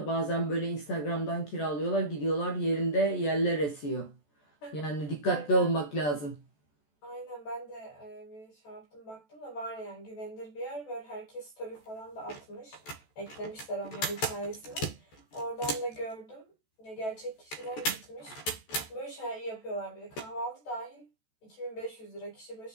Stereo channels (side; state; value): right; late; 14 ms